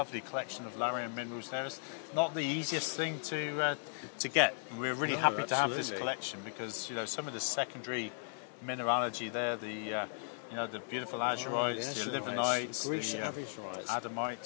collection of Larium minerals there. It's not the easiest thing to get. We're really happy to have this collection because some of the secondary mineralogy there, the beautiful azurites, the livenites, the Greece azurites,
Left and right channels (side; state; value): right; silent; digital silence